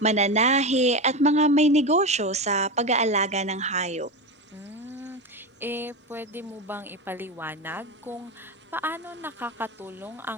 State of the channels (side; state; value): both; normal; correlation 0.19